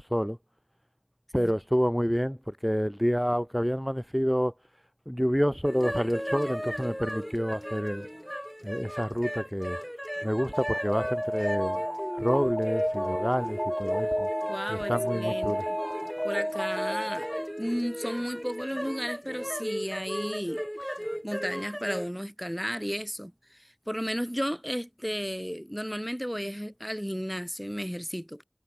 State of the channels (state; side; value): identical; both; correlation 1.00